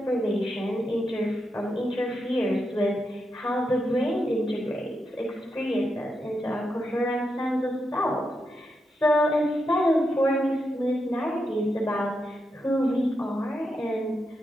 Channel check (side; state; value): both; normal; correlation 0.85